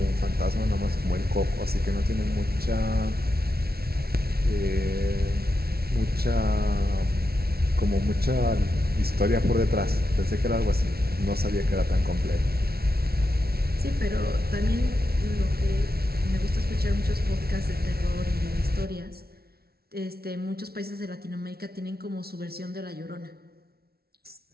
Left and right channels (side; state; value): left; late; 0.45 ms